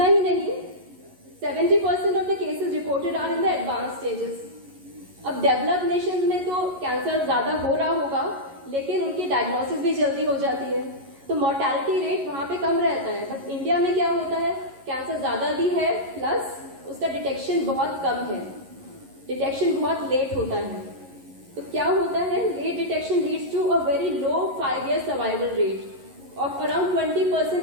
ही नहीं, 70% of the cases reported are in the advanced stages. अब डेवलप्ड नेशंस में तो कैंसर ज्यादा हो रहा होगा, लेकिन उनकी डायग्नोसिस भी जल्दी हो जाती है, तो मोर्टेलिटी रेट वहां पे कम रहता है। बट इंडिया में क्या होता है, कैंसर ज्यादा भी है, प्लस उसका डिटेक्शन बहुत कम है, डिटेक्शन बहुत लेट होता है। तो क्या होता है, late detection leads to a very low 5-year survival rate. of around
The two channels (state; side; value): late; left; 11 ms